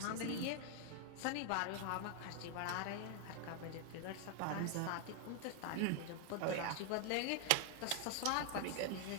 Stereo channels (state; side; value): different; both; correlation 0.00